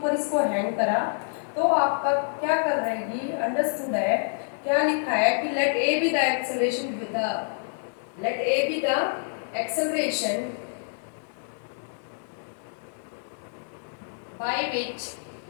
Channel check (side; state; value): right; silent; digital silence